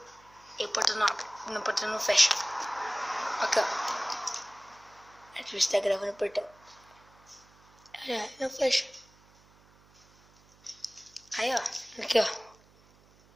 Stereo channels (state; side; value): noise; right; hum, 28 dB below the sound